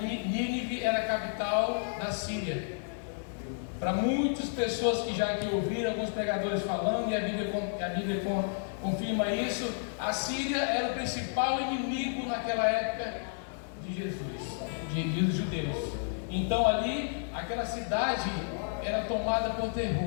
era a capital da Síria. Para muitas pessoas que já aqui ouviram, alguns pregadores falando, e a Bíblia confirma isso, a Síria era o principal inimigo naquela época de Jesus, dos judeus. Então ali, aquela cidade era tomada por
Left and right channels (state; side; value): silent; right; digital silence